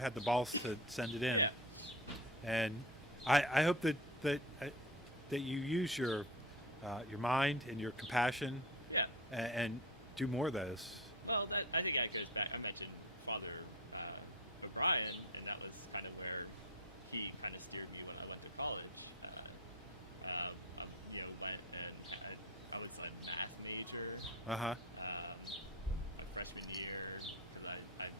the balls to send it in. Yeah. And I hope that that you use your mind and your compassion Yeah. and do more of those. Well, I think that goes back. I mentioned Father O'Brien, and that was kind of where he kind of steered me when I went to college. Went and I was a math major. Uh-huh. My freshman year, because I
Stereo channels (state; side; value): normal; both; correlation 0.28